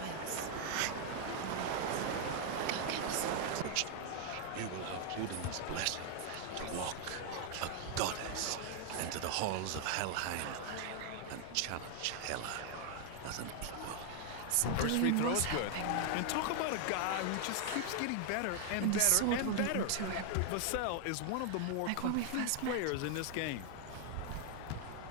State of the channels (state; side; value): different; both; correlation 0.00